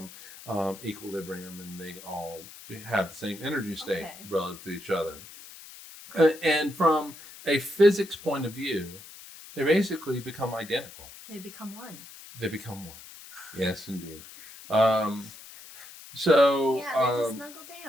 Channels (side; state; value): left; noise; hiss, 17 dB below the sound